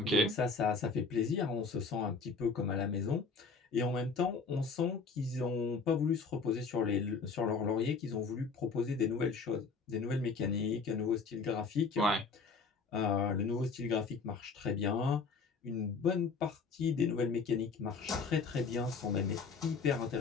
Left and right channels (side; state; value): right; quieter; 4.7 dB